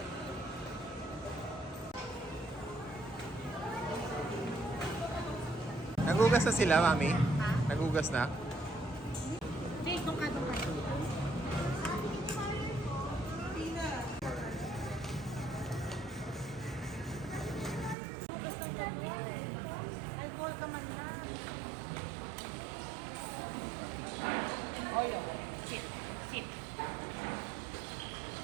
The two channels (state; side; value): drops out; left; at 17.9 s